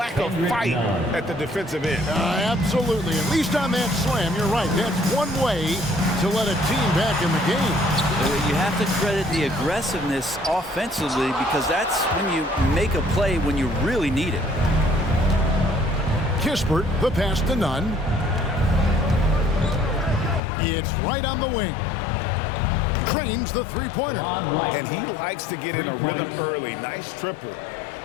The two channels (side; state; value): right; drops out; at 20.4 s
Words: of fight at the defensive end. Absolutely. At least on that slam, you're right. That's one way to let a team back in the game. You have to credit the aggressiveness offensively because that's when you make a play when you really need it. Kispert, the pass to Nunn. It's right on the wing. Trains the three-pointer. And he likes to get in a rhythm early. Nice triple.